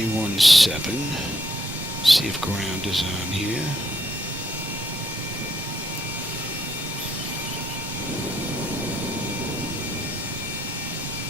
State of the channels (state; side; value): normal; both; correlation 0.72